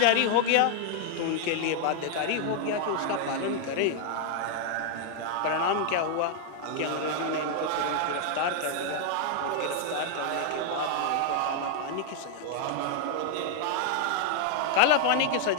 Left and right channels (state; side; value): different; both; correlation 0.00